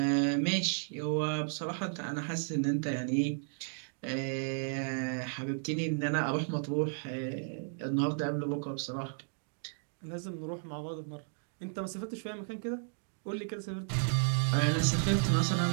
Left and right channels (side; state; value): left; silent; digital silence